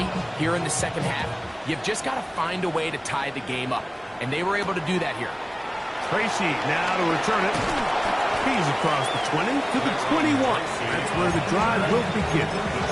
here in the second half, you've just got to find a way to tie the game up. And they were able to do that here. Tracy now to return it. He's across the 20 to the 21. That's where the drive will begin.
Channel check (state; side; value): identical; both; correlation 1.00